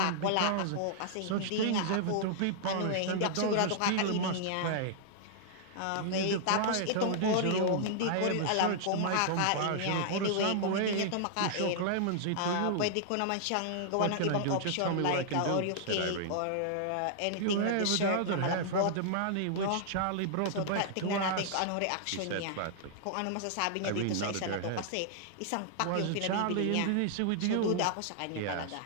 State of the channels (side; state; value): both; different; correlation -0.01